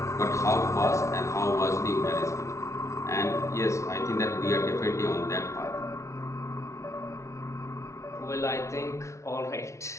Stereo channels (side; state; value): right; late; 0.14 ms